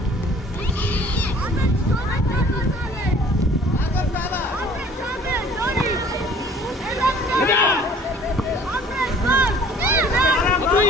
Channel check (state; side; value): normal; both; correlation 0.51